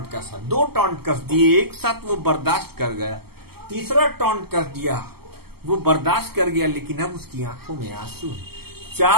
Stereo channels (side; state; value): left; late; 0.96 ms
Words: कसा, 2 टॉन्ट कस दिए एक साथ, वो बर्दाश्त कर गया, तीसरा टॉन्ट कर दिया, वो बर्दाश्त कर गया, लेकिन अब उसकी आंखों में आंसू